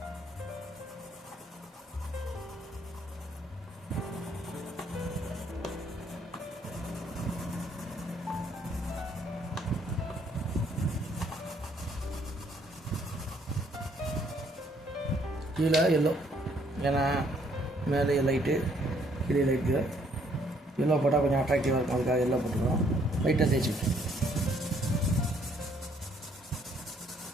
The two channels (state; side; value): normal; both; correlation 0.66